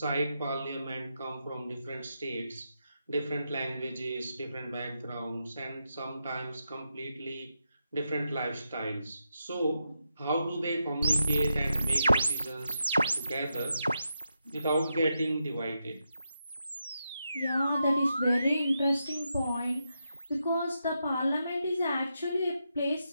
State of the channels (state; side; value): inverted; both; correlation -0.85